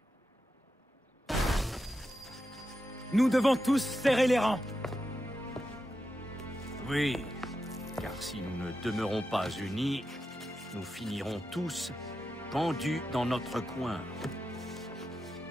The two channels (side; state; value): both; normal; correlation 0.88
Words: Nous devons tous serrer les rangs. Oui, car si nous ne demeurons pas unis, nous finirons tous pendus dans notre coin.